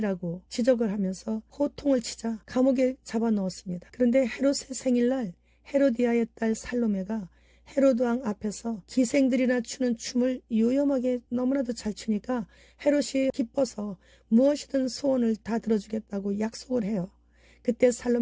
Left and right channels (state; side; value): identical; both; correlation 1.00